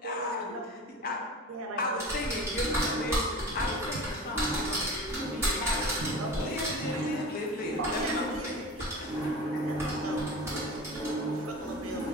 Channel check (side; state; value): both; normal; correlation 0.34